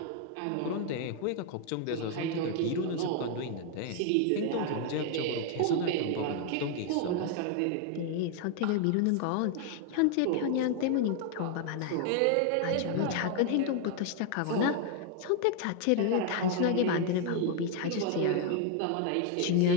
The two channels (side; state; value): both; different; correlation 0.00